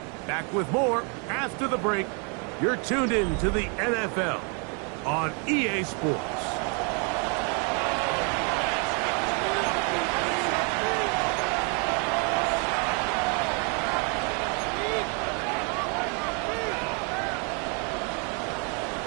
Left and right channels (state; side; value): quieter; left; 36.5 dB